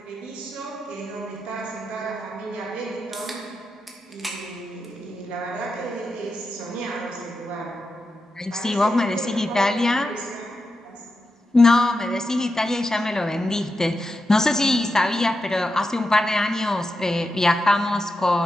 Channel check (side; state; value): both; normal; correlation 0.88